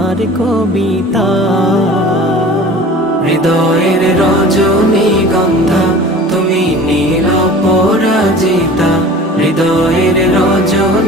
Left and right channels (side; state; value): both; normal; correlation 0.42